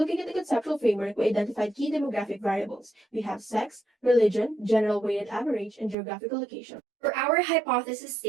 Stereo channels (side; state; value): left; drops out; at 6.0 s